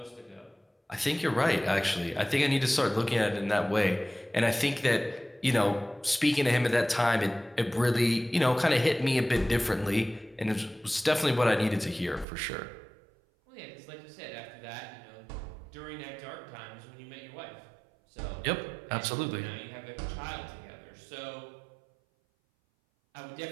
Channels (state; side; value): drops out; left; at 12.2 s